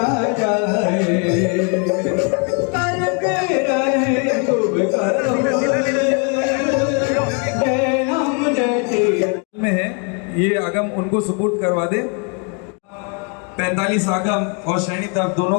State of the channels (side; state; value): right; quieter; 36.0 dB